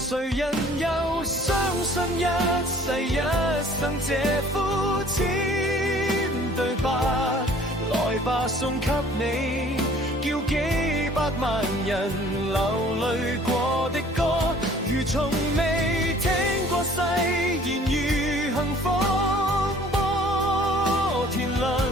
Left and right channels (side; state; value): both; normal; correlation 0.53